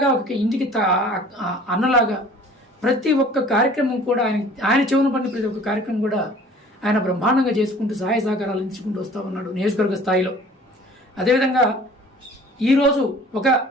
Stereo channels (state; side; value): normal; both; correlation 0.49